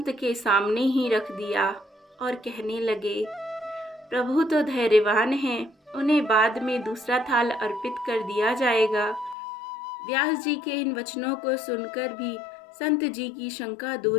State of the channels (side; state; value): right; drops out; at 9.3 s